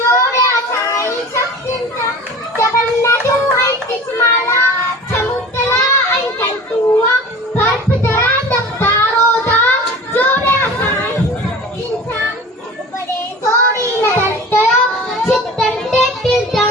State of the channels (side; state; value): both; normal; correlation 0.39